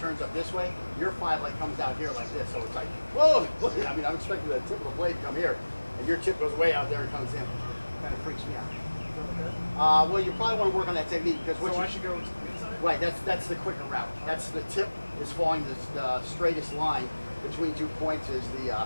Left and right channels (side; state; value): both; inverted; correlation -1.00